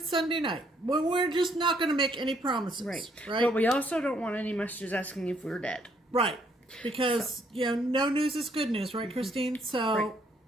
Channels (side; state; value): both; normal; correlation 0.69